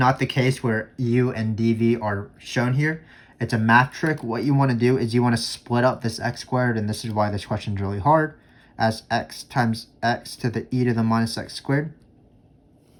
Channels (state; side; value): identical; both; correlation 1.00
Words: the case where u and dv are shown here. It's a math trick. What you want to do is you want to split up this x squared, and this is why this question is really hard, as x times x to the e to the minus x squared.